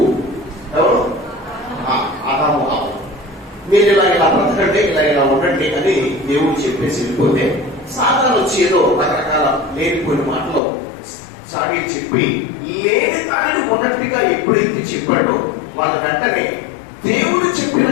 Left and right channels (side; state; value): right; drops out; at 10.6 s